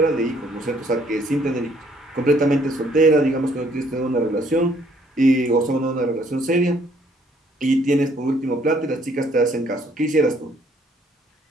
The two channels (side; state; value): both; normal; correlation 0.64